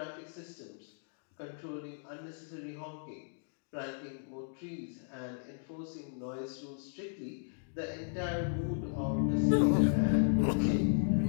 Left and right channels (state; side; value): silent; right; digital silence